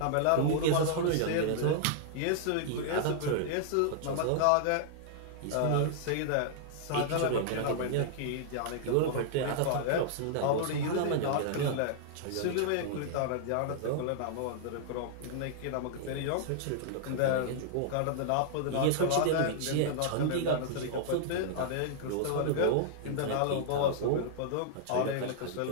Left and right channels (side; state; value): both; different; correlation -0.01